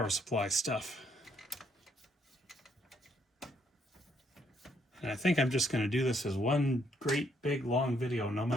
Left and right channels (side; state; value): both; normal; correlation 0.71